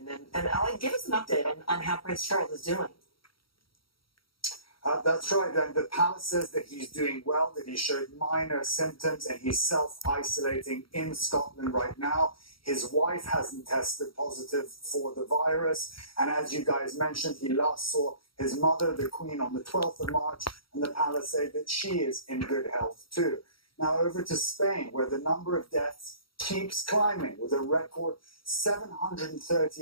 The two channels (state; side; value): late; right; 0.74 ms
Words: And Elliot, give us an update on how Prince Charles is doing. That's right, and the palace says that he's doing well, that he showed minor symptoms, and he's self-isolating in Scotland right now. His wife hasn't tested positive for the virus, and as you guys mentioned, he last saw his mother, the Queen, on the 12th of March, and the palace say that she is in good health too. Now over to Spain, where the number of deaths keeps climbing, with a record